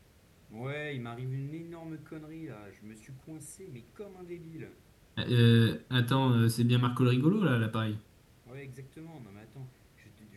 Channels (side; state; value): both; identical; correlation 1.00